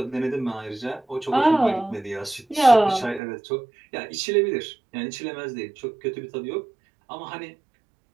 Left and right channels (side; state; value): left; drops out; at 3.2 s